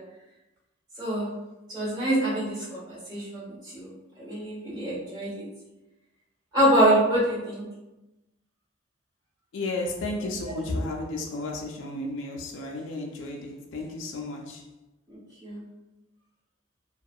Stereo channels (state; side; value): normal; both; correlation 0.27